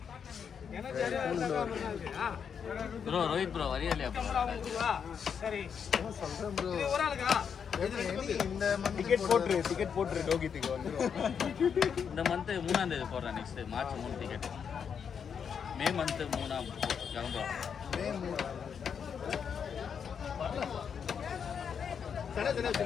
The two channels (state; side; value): quieter; right; 7.1 dB